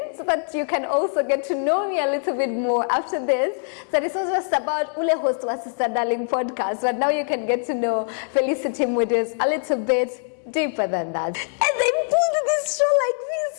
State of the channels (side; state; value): right; silent; digital silence